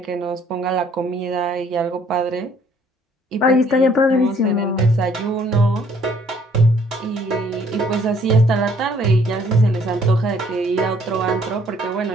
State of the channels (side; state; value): both; normal; correlation 0.62